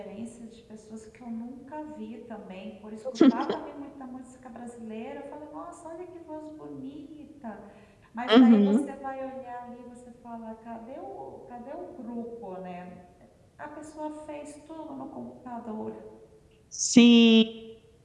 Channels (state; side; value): identical; both; correlation 1.00